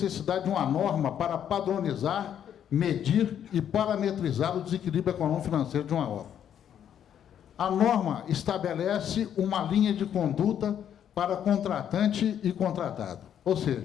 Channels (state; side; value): quieter; right; 9.4 dB